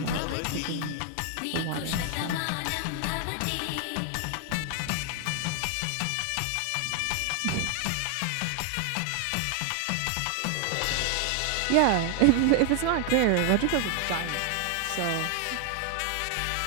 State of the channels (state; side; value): different; both; correlation 0.00